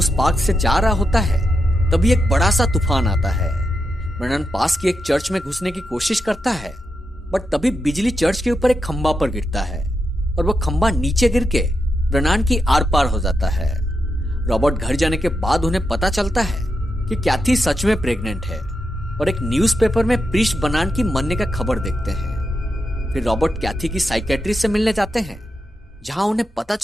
पार्क से जा रहा होता है तभी एक बड़ा सा तूफान आता है। ब्रेनन पास की एक चर्च में घुसने की कोशिश करता है बट तभी बिजली चर्च के ऊपर एक खंबा पर गिरता है और वो खंबा नीचे गिर के ब्रेनन की आर पार हो जाता है। रॉबर्ट घर जाने के बाद उन्हें पता चलता है कि कैथी सच में प्रेग्नेंट है और एक न्यूज़पेपर में प्रीस्ट ब्रेनन की मरने का खबर देखते हैं। फिर रॉबर्ट कैथी की साइकेट्रिस्ट से मिलने जाते हैं जहां उन्हें पता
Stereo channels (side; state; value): both; normal; correlation 0.86